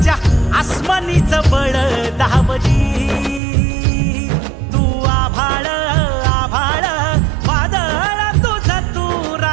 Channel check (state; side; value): drops out; left; at 3.4 s